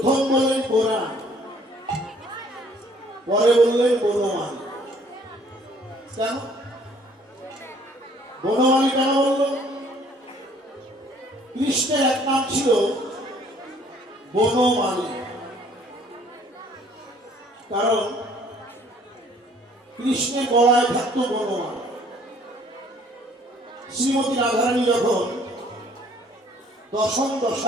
বললেন পুরাণ, পরে বললেন বনমালী। কেন বনমালী কেন বলল? কৃষ্ণের এক নাম ছিল বনমালী, কারণ কৃষ্ণের গলায় থাকতো বনমালা। শ্রীমতী রাধারানী যখন দশম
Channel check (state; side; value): normal; both; correlation 0.59